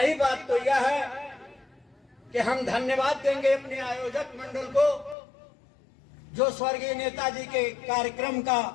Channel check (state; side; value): drops out; right; at 5.2 s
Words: बात तो यह है कि हम धन्यवाद देंगे अपने आयोजक मंडल को, जो स्वर्गीय नेताजी के कार्यक्रम